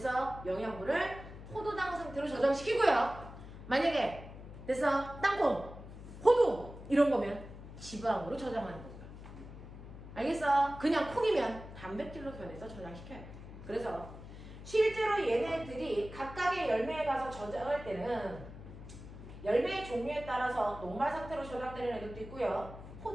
영양분을 포도당 상태로 저장시키고요. 만약에 그래서 땅콩, 호두 이런 거면 지방으로 저장하는 거죠. 알겠어? 그냥 콩이면 단백질로 변해서 저장시켜요. 그래서 실제로 얘네들이 각각의 열매에 가서 저장할 때는 열매의 종류에 따라서 녹말 상태로 저장되는 애들도 있고요.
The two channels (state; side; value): noise; left; hum, 14 dB below the sound